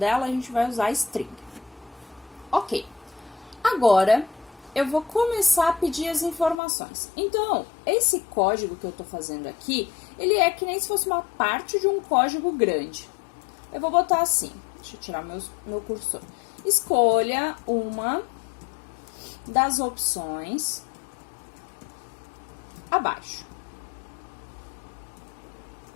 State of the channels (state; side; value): drops out; right; at 6.6 s